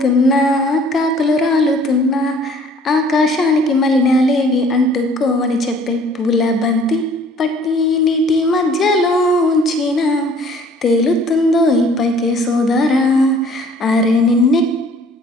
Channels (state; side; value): normal; both; correlation 0.55